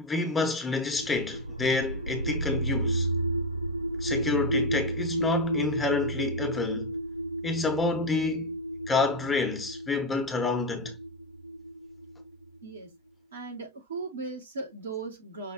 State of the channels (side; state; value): both; normal; correlation 0.07